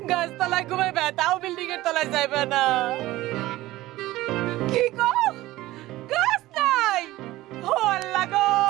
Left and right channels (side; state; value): left; quieter; 17.1 dB